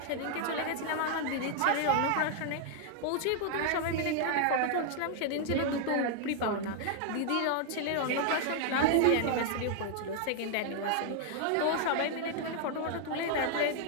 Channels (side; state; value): both; different; correlation 0.00